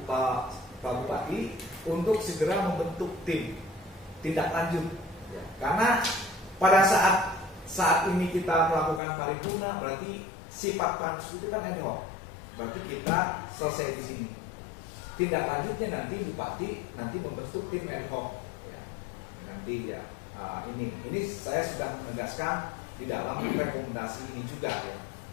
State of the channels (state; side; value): drops out; right; at 9.0 s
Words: Pak Bupati untuk segera membentuk tim tindak lanjut ya. Karena pada saat ini kita melakukan paripurna, berarti sifat pansus itu kan ad hoc. Berarti kita selesai di sini. Tindak lanjutnya nanti Bupati nanti membentuk tim ad hoc ya. Nanti ya ini saya sudah menegaskan di dalam rekomendasi ini juga ya.